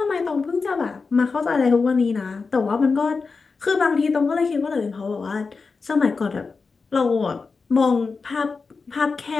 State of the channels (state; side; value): quieter; right; 4.6 dB